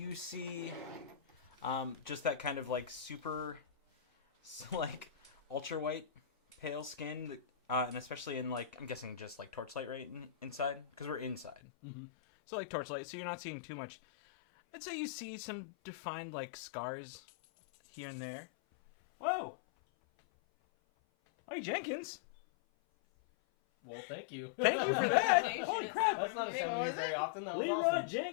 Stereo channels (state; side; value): drops out; right; at 11.6 s